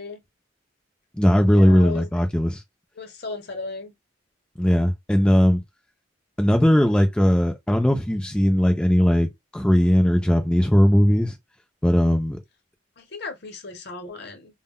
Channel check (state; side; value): normal; both; correlation 0.98